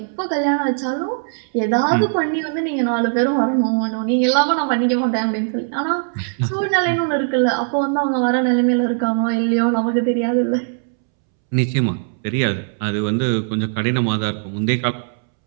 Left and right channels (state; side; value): silent; left; 66 dB below the other